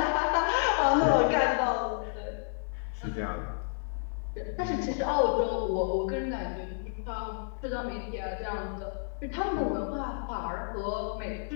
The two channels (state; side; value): silent; right; digital silence